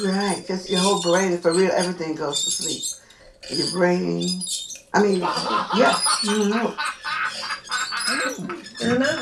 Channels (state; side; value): identical; both; correlation 1.00